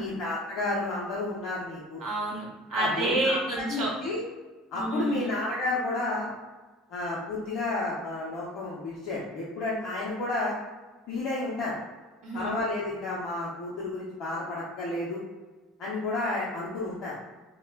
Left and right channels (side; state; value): both; normal; correlation 0.38